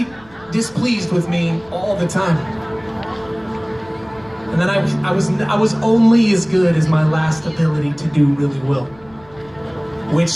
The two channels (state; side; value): noise; left; rumble, 27 dB below the sound